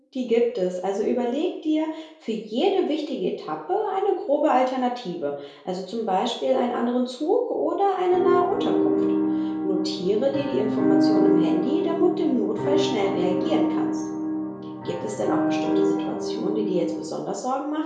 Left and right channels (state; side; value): identical; both; correlation 1.00